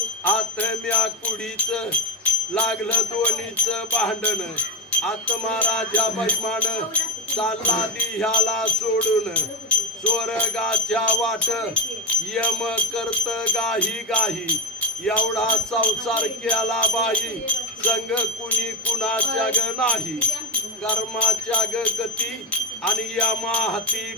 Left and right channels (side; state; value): both; normal; correlation 0.14